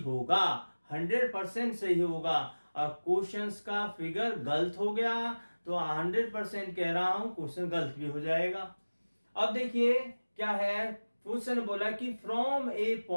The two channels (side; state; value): both; inverted; correlation -1.00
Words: 100% सही होगा। और क्वेश्चंस का फिगर गलत हो गया तो 100% कह रहा हूं क्वेश्चन गलत भी हो जाएगा। अब देखिए क्या है, क्वेश्चन बोला कि from a